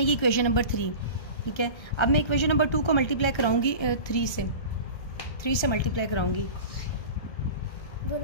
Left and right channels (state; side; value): late; right; 1.3 ms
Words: इक्वेशन नंबर 3। ठीक है, अब मैं इक्वेशन नंबर 2 को मल्टीप्लाई कराऊंगी 3 से मल्टीप्लाई कराऊंगी।